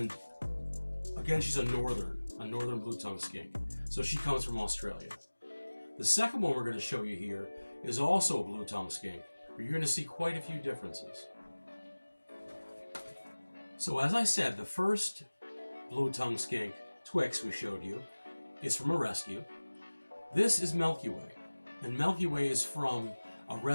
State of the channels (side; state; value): both; inverted; correlation -1.00